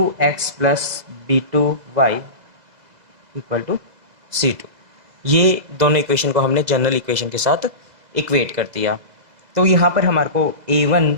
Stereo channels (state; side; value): late; left; 2.0 ms